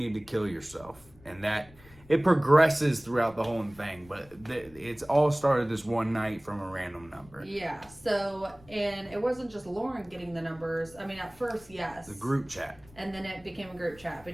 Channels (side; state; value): left; noise; rumble, 24 dB below the sound